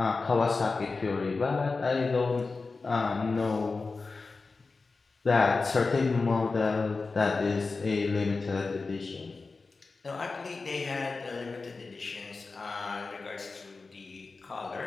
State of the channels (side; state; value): right; quieter; 4.0 dB